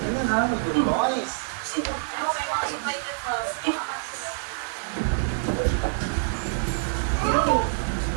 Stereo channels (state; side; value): silent; left; 61 dB below the other